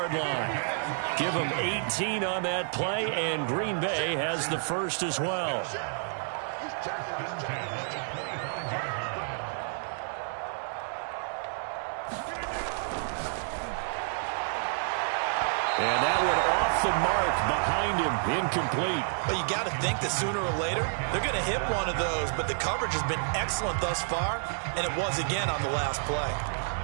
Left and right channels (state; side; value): silent; left; digital silence